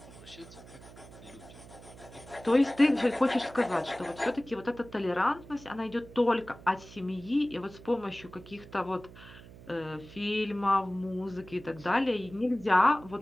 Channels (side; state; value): right; noise; hum, 18 dB below the sound